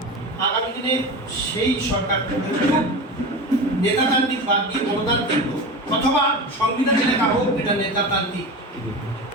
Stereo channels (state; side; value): normal; both; correlation 0.27